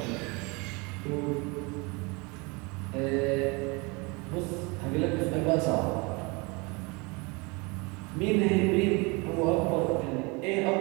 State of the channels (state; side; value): quieter; left; 28.1 dB